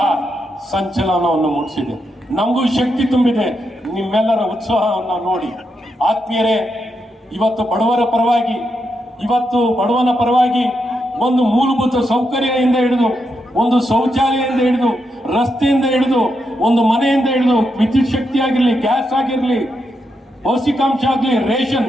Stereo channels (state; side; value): normal; both; correlation 0.83